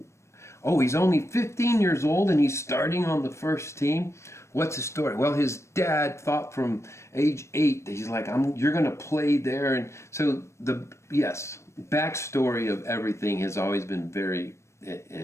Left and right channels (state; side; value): late; right; 0.13 ms